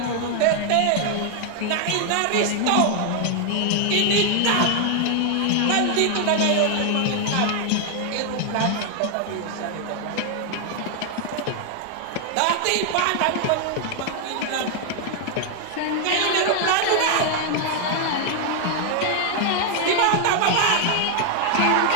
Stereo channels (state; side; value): different; both; correlation 0.00